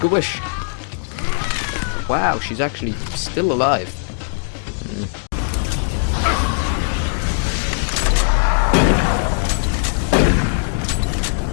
a wish. Wow, she's actually still alive.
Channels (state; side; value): silent; right; 66 dB below the other